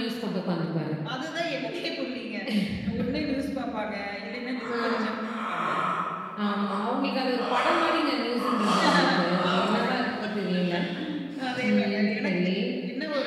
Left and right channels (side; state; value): both; identical; correlation 1.00